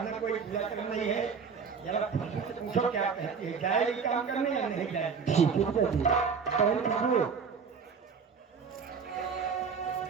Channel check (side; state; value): left; quieter; 5.9 dB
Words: कोई बुरा करना नहीं है। जरा खुशबू से पूछो क्या कहती है, जाएगी काम करने या नहीं जाएगी? ठीक है पिताजी। बहन खुशबू,